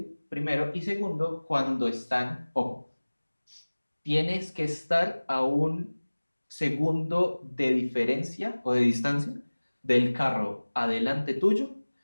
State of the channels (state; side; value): inverted; both; correlation -1.00